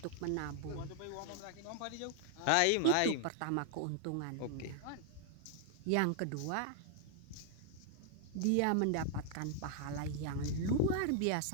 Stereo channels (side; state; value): both; different; correlation 0.00